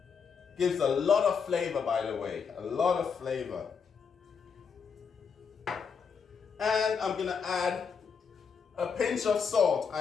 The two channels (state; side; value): quieter; right; 6.2 dB